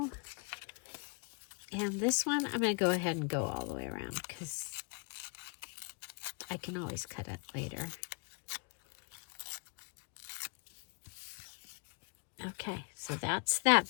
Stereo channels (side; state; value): right; quieter; 32.8 dB